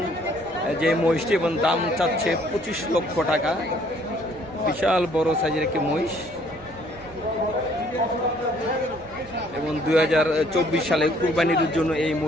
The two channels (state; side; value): normal; both; correlation 0.62